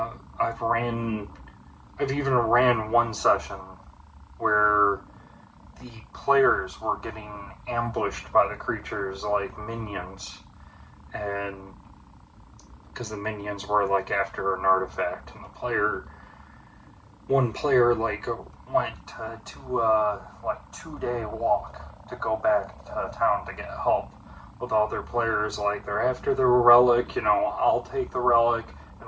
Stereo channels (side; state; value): both; identical; correlation 1.00